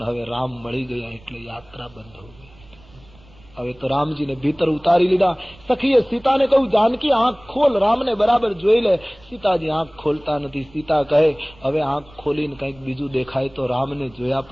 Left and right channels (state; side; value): noise; right; rumble, 26 dB below the sound